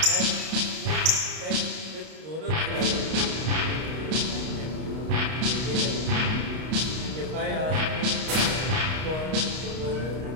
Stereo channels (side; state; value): left; late; 32 ms